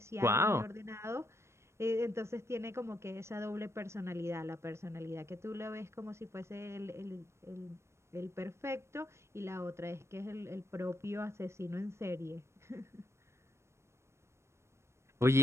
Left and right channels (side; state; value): left; late; 0.13 ms